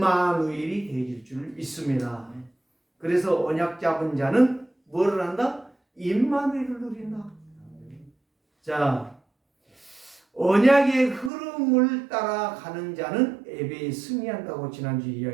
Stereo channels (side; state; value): left; drops out; at 11.3 s